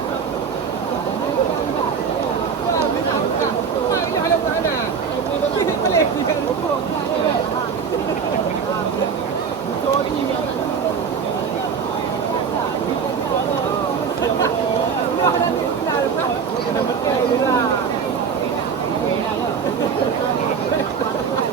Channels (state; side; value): quieter; left; 6.4 dB